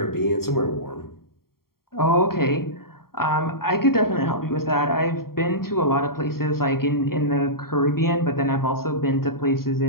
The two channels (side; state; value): right; late; 0.93 ms